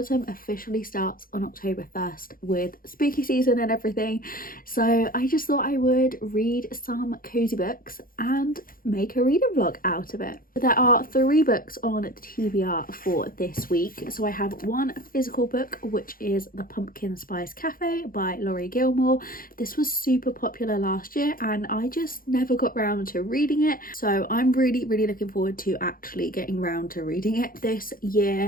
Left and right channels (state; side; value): late; right; 0.41 ms